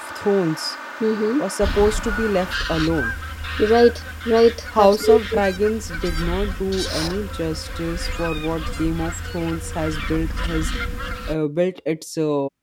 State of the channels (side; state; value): both; identical; correlation 1.00